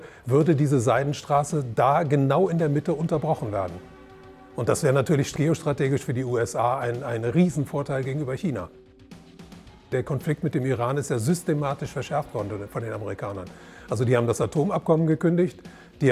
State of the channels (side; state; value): both; identical; correlation 1.00